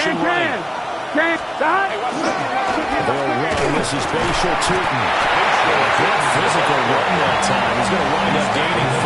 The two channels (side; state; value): both; identical; correlation 1.00